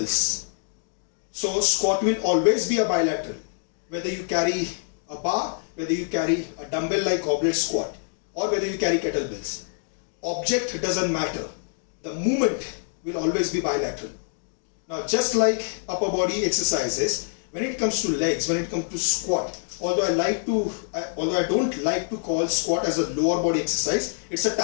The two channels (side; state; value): right; silent; digital silence